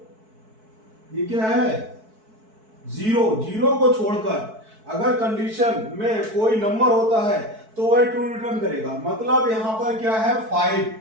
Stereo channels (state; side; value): late; left; 4.6 ms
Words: ये क्या है, 0 को छोड़कर अगर कंडीशन में कोई नंबर होता है तो वह ट्रू रिटर्न करेगा। मतलब यहां पर क्या है, 5,